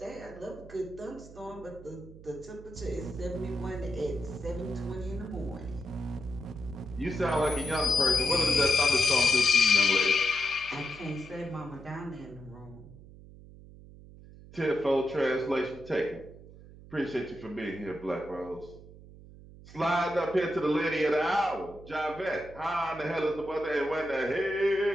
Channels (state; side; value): noise; right; hum, 19 dB below the sound